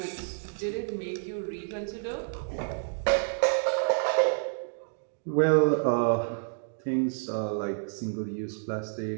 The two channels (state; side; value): silent; left; digital silence